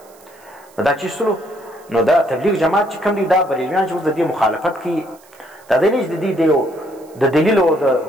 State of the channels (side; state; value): right; noise; hiss, 28 dB below the sound